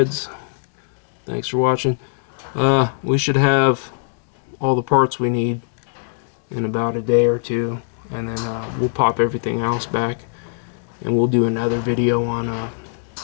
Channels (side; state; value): right; silent; 65 dB below the other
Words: Thanks for watching. We should have all the parts we need in about a day or two, and then we'll pop everything else back, and we'll do another video on